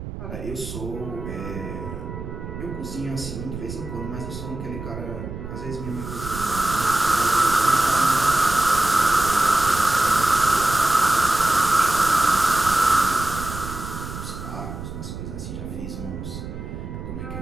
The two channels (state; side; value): noise; right; rumble, 9 dB below the sound